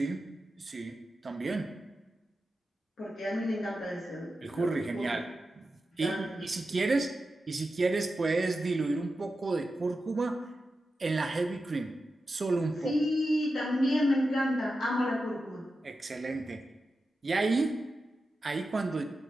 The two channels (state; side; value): normal; both; correlation 0.91